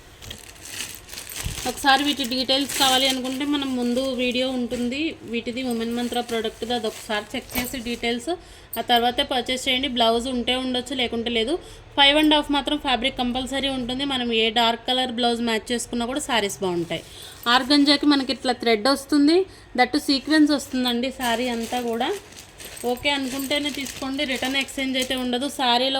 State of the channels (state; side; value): identical; both; correlation 1.00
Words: ఒకసారి వీటి డీటెయిల్స్ కావాలి అనుకుంటే మనం ముందు వీడియో ఉంటుంది వీటిది ఉమెన్ మంత్ర ప్రోడక్ట్ది, అది ఒకసారి చెక్ చేసి డీటెయిల్స్ ఆ తర్వాతే పర్చేస్ చేయండి. బ్లౌజ్ ఉంటే ఉండొచ్చు, లేకుంటే లేదు. 5.5 మాత్రం ఫ్యాబ్రిక్ కంపల్సరీ ఉంటుంది. మనం ఏ డార్క్ కలర్ బ్లౌజ్ మ్యాచ్ చేసుకున్నా కూడా శారీస్ బాగుంటాయి. ఆర్గంజాకి మనకి ఇట్లా థ్రెడ్ వస్తుంది, దట్టు సీక్వెన్స్ వస్తుందండి శారీ అంతా కూడా. ఓకే అనుకుంటేనే తీసుకోండి. రిటర్న్ ఎక్స్చేంజ్ అయితే ఉండదు.